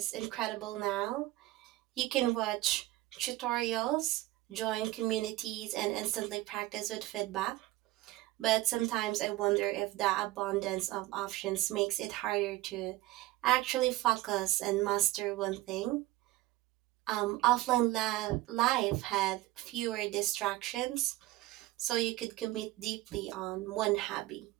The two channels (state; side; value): quieter; left; 17.6 dB